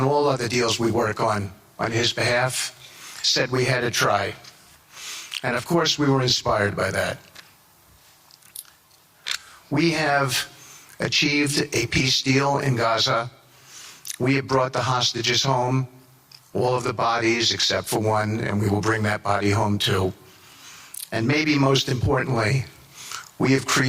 all other deals we work on his behalf, said we had to try. And of course we were inspired by that. We have achieved a peace deal in Gaza. We have brought the hostages home, all of the bodies except for one, and we will bring that body home too. And maybe most importantly, we have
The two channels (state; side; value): identical; both; correlation 1.00